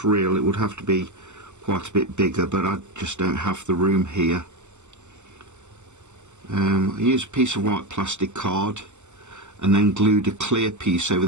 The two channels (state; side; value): late; left; 0.84 ms